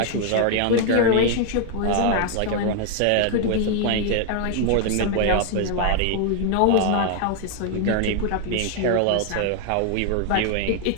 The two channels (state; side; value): different; both; correlation 0.00